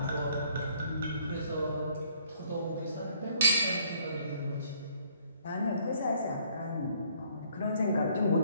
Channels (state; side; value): inverted; both; correlation -0.63